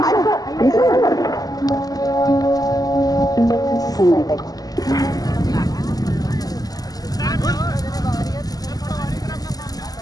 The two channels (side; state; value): right; late; 0.18 ms